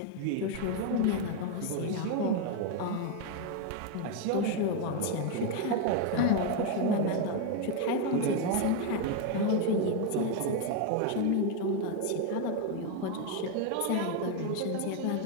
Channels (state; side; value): different; both; correlation 0.01